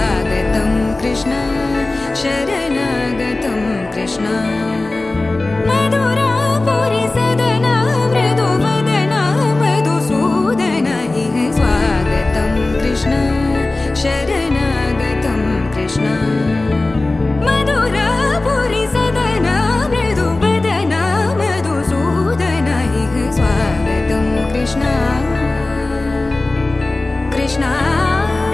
कृष्ण शरणागतं कृष्ण मधुरापुरी सदन मृदुवदन मधुसूदन इह स्वागतं कृष्ण शरणागतं कृष्ण मधुरापुरी सदन मृदुवदन मधुसूदन इह स्वागतं कृष्ण कृष्ण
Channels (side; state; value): right; quieter; 3.0 dB